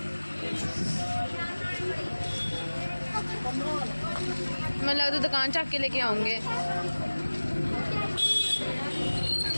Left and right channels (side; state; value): both; inverted; correlation -1.00